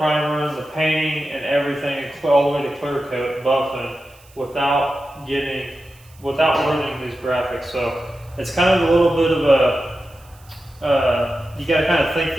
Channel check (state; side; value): noise; right; hiss, 28 dB below the sound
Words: the painting, and everything, all the way to clear coat, buffing, without ruining these graphics. So it's kind of a little bit of you got to kind of think